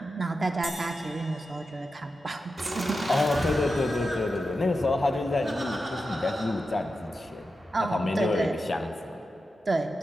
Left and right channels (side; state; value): both; normal; correlation 0.90